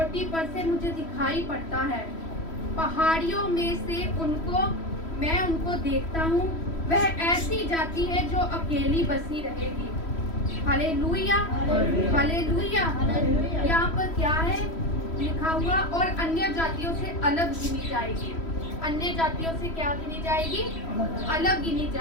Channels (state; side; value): late; right; 3.1 ms